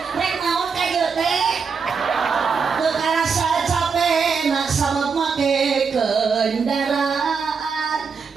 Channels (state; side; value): quieter; left; 5.5 dB